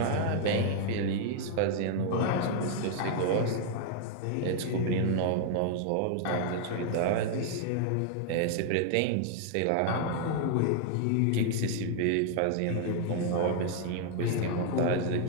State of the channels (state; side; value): different; both; correlation 0.00